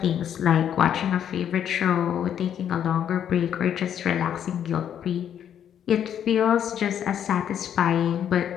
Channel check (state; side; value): quieter; right; 9.4 dB